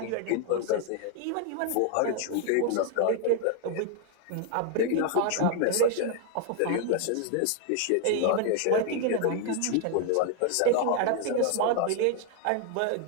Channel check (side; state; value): both; different; correlation 0.00